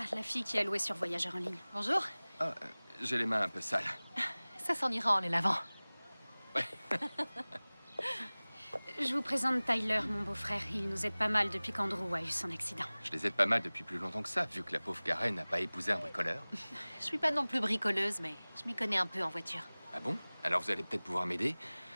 la fille qui a loué sur Voyageur en ligne. Bonjour. Ah, j'ai les mains un peu sales. Ça s'en ira en les lavant. Je vous présente Tyler, mon beau-frère. Il nous aide pas mal depuis qu'Andrew a eu son accident. Je les aide pas mal depuis plus longtemps que ça, vu que la pauvre Karen n'a pas épousé un bricoleur. Je suis pas non plus bricoleuse, mais je m'y connais un peu en voiture. Ah bon? Alors vous allez peut-être pouvoir m'aider.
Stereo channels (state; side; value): inverted; both; correlation -1.00